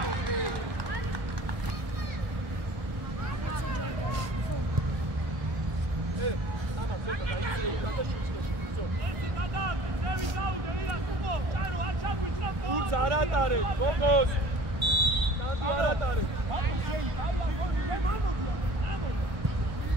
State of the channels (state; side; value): late; left; 1.5 ms